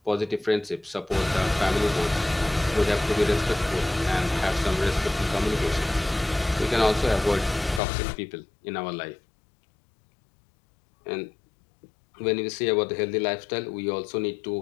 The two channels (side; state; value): right; drops out; at 7.8 s